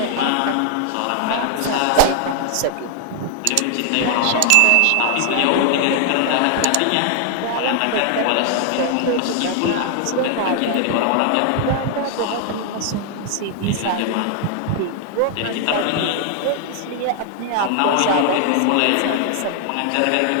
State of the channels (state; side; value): different; both; correlation 0.00